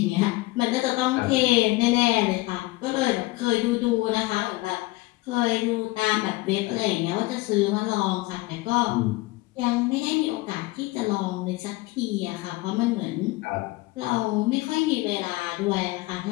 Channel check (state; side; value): quieter; right; 21.0 dB